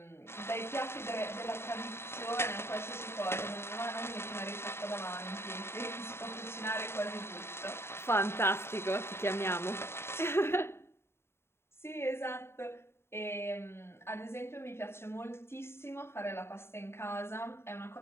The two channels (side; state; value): right; late; 0.12 ms